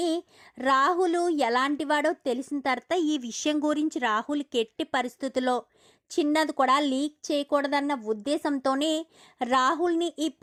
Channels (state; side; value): identical; both; correlation 1.00